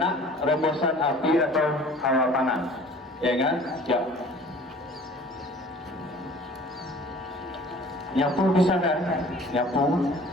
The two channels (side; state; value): both; normal; correlation 0.48